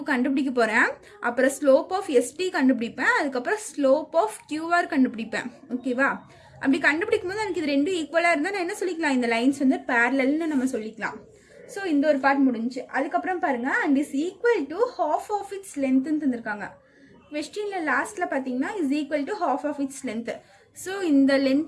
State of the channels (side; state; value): both; identical; correlation 1.00